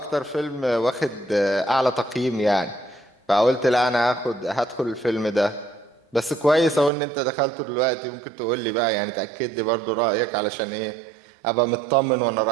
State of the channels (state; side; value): drops out; left; at 6.9 s